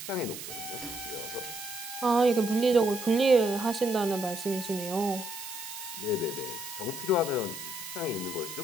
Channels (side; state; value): right; noise; hiss, 10 dB below the sound